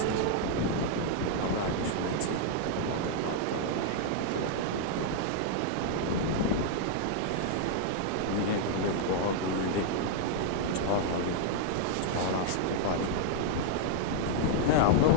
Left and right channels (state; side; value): different; both; correlation -0.01